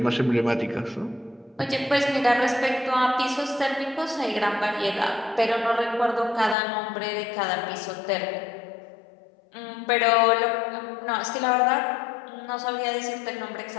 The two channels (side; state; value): right; drops out; at 6.6 s